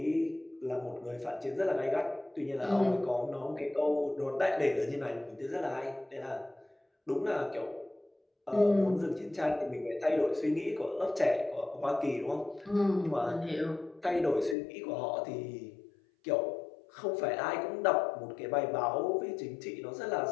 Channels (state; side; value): drops out; right; at 14.6 s